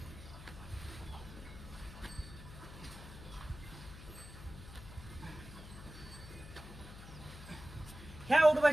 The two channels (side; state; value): left; noise; hum, 14 dB below the sound